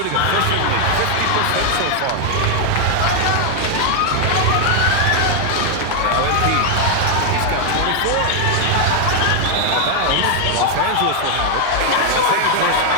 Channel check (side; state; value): both; different; correlation 0.00